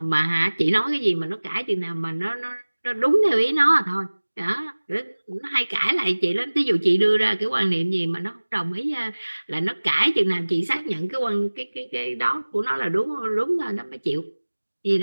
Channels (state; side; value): inverted; both; correlation -1.00